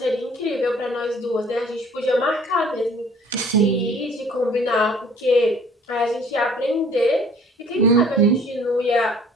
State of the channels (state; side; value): normal; both; correlation 0.53